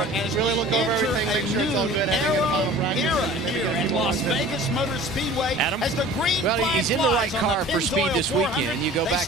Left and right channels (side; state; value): both; normal; correlation 0.44